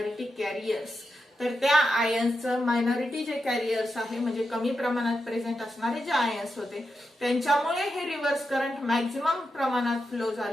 carriers. तर त्या आयन्सचं मायनॉरिटी जे कॅरियर्स आहे म्हणजे कमी प्रमाणात प्रेझेंट असणारे जे आयन्स होते त्यांच्यामुळे हे रिव्हर्स करंट मॅक्झिमम प्रमाणात फ्लो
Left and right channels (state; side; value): normal; both; correlation 0.87